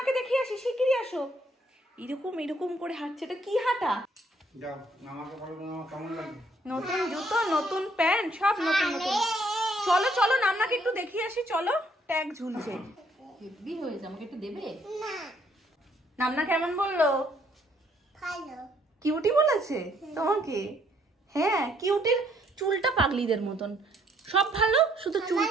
দেখিয়ে আসি, শিগগিরই আসো। এরকম এরকম করে হাঁটছে, এটা কি হাঁটা? যাও মামাকে বলো মামা কেমন লাগে। নতুন জুতো, নতুন প্যান্ট, সব নতুন নতুন। চলো চলো নান্নাকে একটু দেখিয়ে আসি, চলো। ট্যাগ ঝুলছে, হেভি হয়েছে। আমাকে একটু দেবে? না নান্না কেমন বললো? ভালো। কিউটি বলেছে তোমাকে? হ্যাঁ, কিউটির চুলটা পাগলিদের মতন। সব ভালো, শুধু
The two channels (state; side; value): normal; both; correlation 0.67